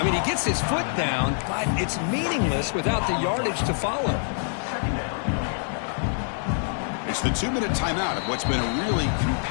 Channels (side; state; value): right; silent; digital silence